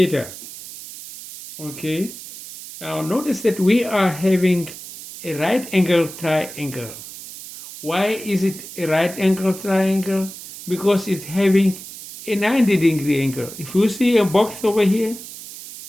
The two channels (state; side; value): noise; right; hiss, 13 dB below the sound